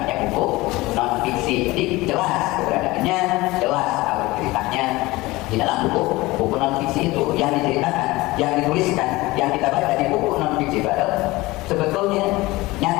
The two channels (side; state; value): right; quieter; 20.4 dB